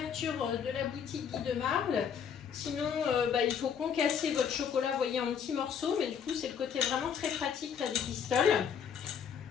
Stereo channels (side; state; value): right; quieter; 7.5 dB